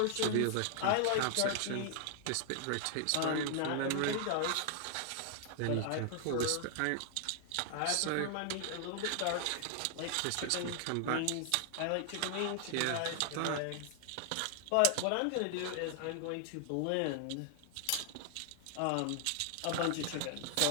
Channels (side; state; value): both; different; correlation 0.00